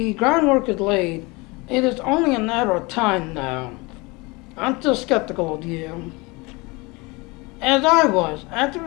groundwork is laid. It is only a matter of time now. I'm still skeptical of you. As I was, after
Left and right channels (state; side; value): quieter; right; 25.6 dB